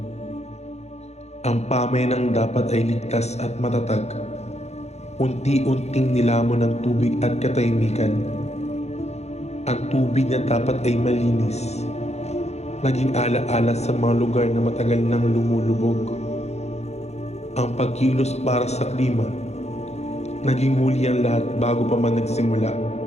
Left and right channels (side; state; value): right; late; 0.32 ms